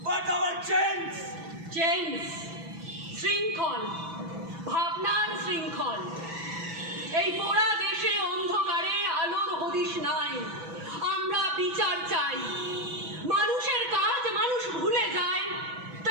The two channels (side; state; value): left; late; 6.1 ms